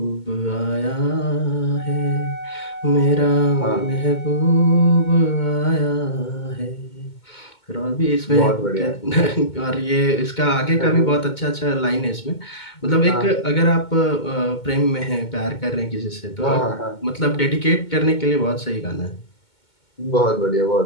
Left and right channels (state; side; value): late; right; 2.2 ms